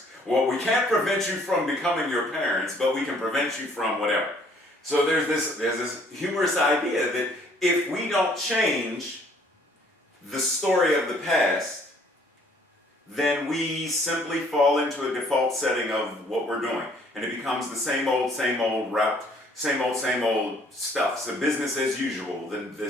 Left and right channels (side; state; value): both; normal; correlation 0.61